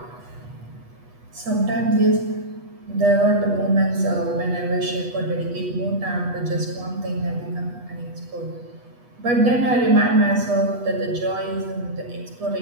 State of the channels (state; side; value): late; left; 8.2 ms